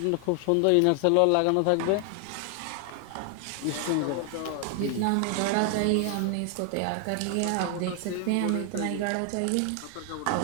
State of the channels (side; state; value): both; different; correlation 0.00